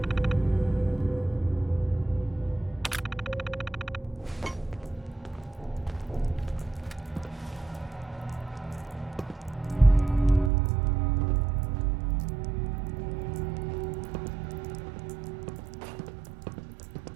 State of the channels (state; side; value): drops out; left; at 10.5 s